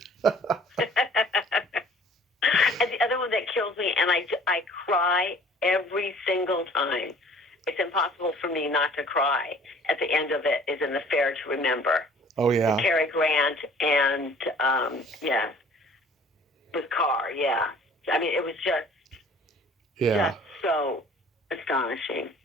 And the other one that kills me, and I cry every single time. It's impossible for me not to cry at the end of it, is in The Fair to Remember. Oh, yeah. With Cary Grant and, with Carr, yeah. I mean, it was just so astonishing.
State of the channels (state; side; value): normal; both; correlation 0.52